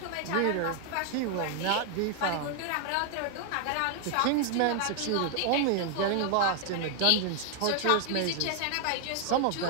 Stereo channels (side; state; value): both; different; correlation 0.00